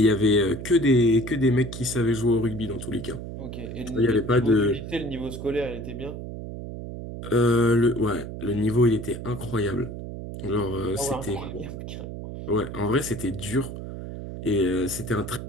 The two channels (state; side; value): noise; right; hum, 9 dB below the sound